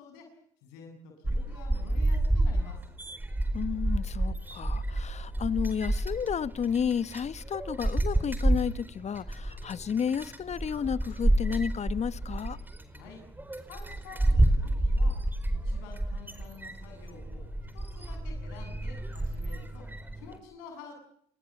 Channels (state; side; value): normal; both; correlation 0.86